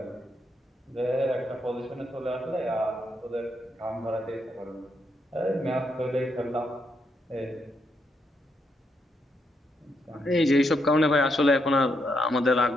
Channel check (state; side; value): normal; both; correlation 0.79